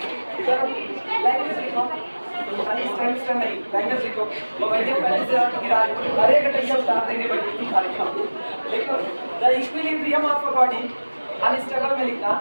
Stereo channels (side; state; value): both; inverted; correlation -1.00